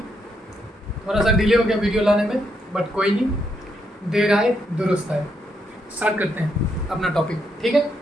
थोड़ा सा डिले हो गया वीडियो लाने में, बट कोई नहीं, देर आए दुरुस्त आए। स्टार्ट करते हैं अपना टॉपिक, ठीक है।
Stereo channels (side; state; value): both; normal; correlation 0.78